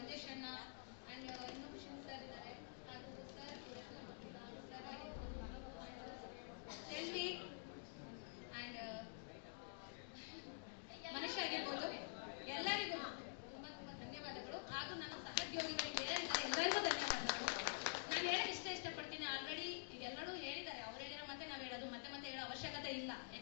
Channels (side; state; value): right; silent; digital silence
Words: ಅಣ್ಣ ಆ್ಯಂಡ್ ಇನ್ನೊಬ್ಬ ಶಿವ್ ಸರ್ ಇದ್ದಾರೆ, ಹಾಗೂ ಸರ್ ಸರ್ ಆಗಿರ್ಬೋದು, ಸೆಲ್ವಿ ಆ್ಯಂಡ್ ಮನುಷ್ಯ ಆಗಿರ್ಬೋದು, ಎಲ್ಲರಿಗೂ ತುಂಬಾ ಧನ್ಯವಾದಗಳು. ಹಾಗೂ ನನ್ನ ಸಹೋದ್ಯೋಗಿಗಳಿಗೆ ಎಲ್ಲರಿಗೂ ಧನ್ಯವಾದಗಳು. ನಾನು ಹೇಳಕ್ಕೆ ಇಷ್ಟಪಡ್ತೀನಿ. ಆಲ್ರೆಡಿ ಈಗ ಎಲ್ಲರೂ ಹೇಳಿದ್ದಾರೆ, ಅವ್ರು ಹೇಳಿರೋ ಮತ್ತೆ ನಾವು ಹೇಳೋದು ಮತ್ತೆ ಹೇಳೋ ಅವಶ್ಯಕತೆ ಇಲ್ಲ,